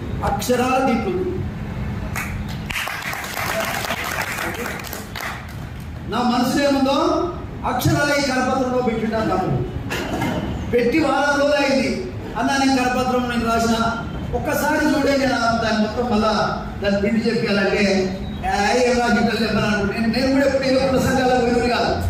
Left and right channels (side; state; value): both; identical; correlation 1.00